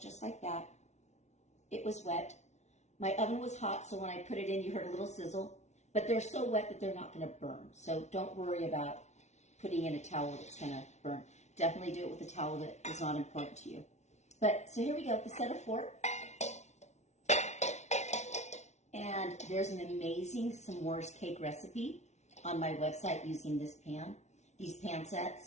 just like that. It was wet. My oven was hot, so when I put it in, you heard a little sizzle, but they're so wet that they're not going to burn. So don't worry about putting in a towel that's going to burn. Definitely do it with a towel that is not important to you. But, so here we go, the set of 4. And there's an amazing s'mores cake recipe on my website using this pan, these pan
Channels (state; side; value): late; right; 0.32 ms